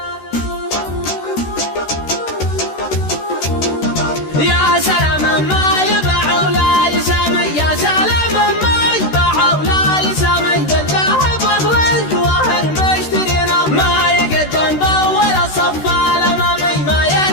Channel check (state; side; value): late; right; 13 ms